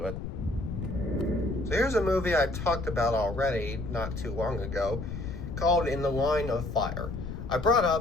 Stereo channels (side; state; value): left; noise; rumble, 7 dB below the sound